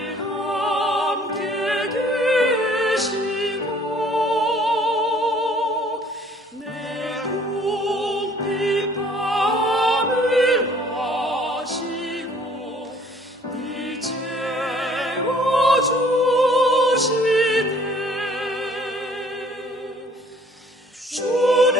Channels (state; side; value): normal; both; correlation 0.57